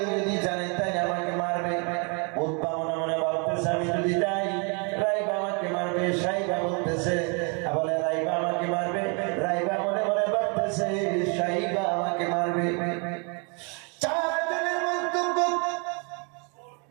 যদি জানে তাই আমাকে মারবে।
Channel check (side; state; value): left; quieter; 34.8 dB